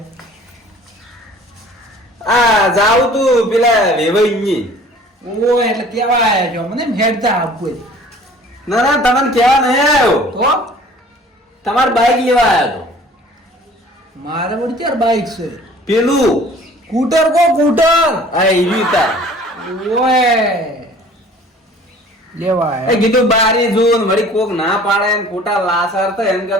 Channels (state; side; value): normal; both; correlation 0.49